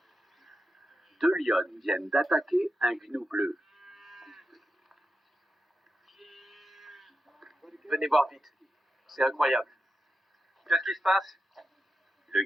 2 lionnes viennent d'attaquer un gnou bleu. Venez voir vite. C'est incroyable. Qu'est-ce qui se passe? Le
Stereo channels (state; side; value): normal; both; correlation 0.88